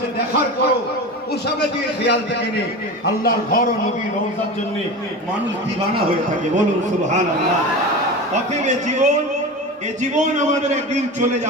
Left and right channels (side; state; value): both; normal; correlation 0.28